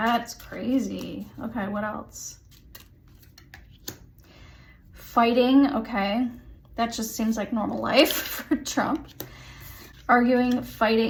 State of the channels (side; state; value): both; identical; correlation 1.00